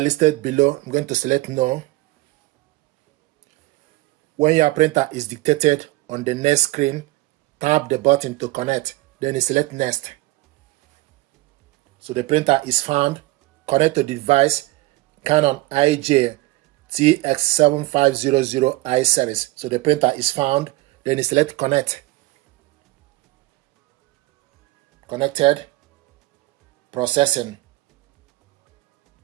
below? I'm going to select no. When your printer is dictated on the next screen, tap the button to connect. Then you select next. So the printer is found. Connect to the device Canon IJ TS7550i series. So the printer is found. Then you select connect. Connected. Processing.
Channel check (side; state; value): left; quieter; 19.9 dB